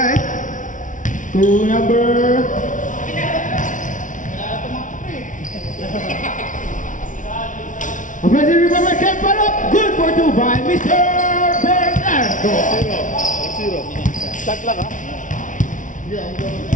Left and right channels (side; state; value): right; late; 0.37 ms